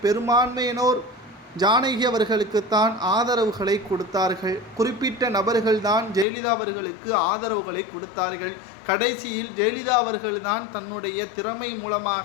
பெரும்பான்மையினோர் ஜானகி அவர்களுக்குத்தான் ஆதரவுகளை கொடுத்தார்கள். குறிப்பிட்ட நபர்கள்தான் ஜெயலலிதா அவர்களுக்கு ஆதரவுகளை கொடுத்தார்கள். கடைசியில் ஜெயலலிதா அவர்கள்தான் தன்னுடைய திறமை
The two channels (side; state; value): right; drops out; at 6.2 s